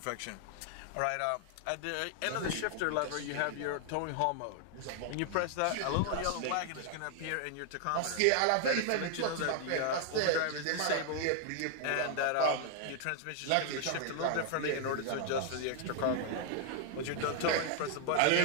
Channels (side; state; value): both; different; correlation 0.00